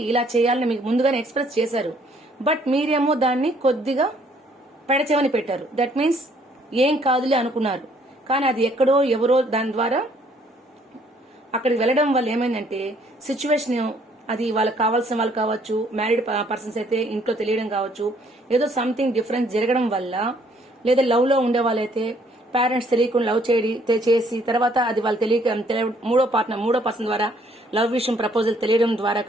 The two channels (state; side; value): normal; both; correlation 0.64